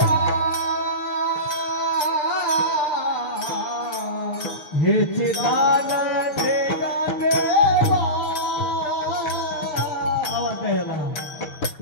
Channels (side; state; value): right; late; 7.0 ms